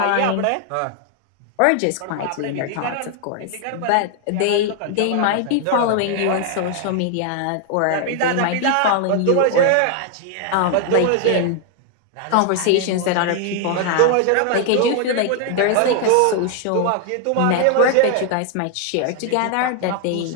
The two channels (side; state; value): both; different; correlation 0.00